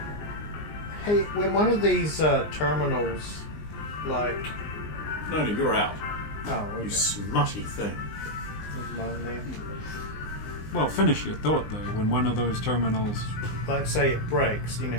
Hey, when one of these terminals, like... No, you're out. Oh, okay. You smutty thing. Never mind then. Well, finish your thought, though. When one of those terminals... Like, say it breaks, you know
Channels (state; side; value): late; right; 19 ms